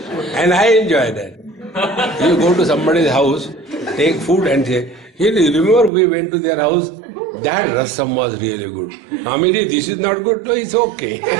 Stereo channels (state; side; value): drops out; left; at 5.9 s